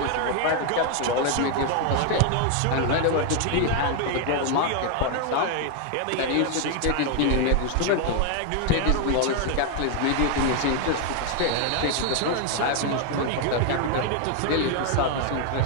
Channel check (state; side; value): different; both; correlation 0.01